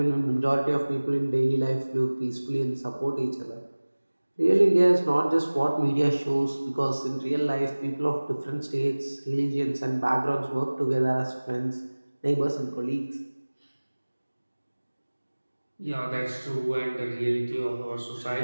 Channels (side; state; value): both; inverted; correlation -1.00